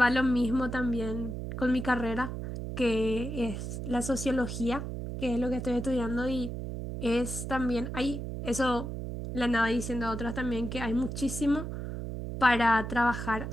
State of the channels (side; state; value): right; noise; hum, 5 dB below the sound